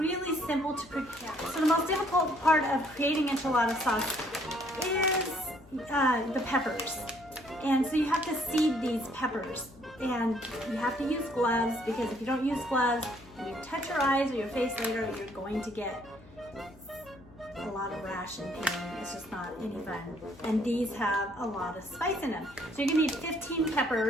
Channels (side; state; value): left; noise; hum, 24 dB below the sound